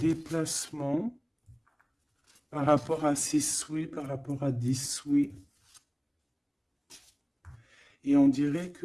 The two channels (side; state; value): both; identical; correlation 1.00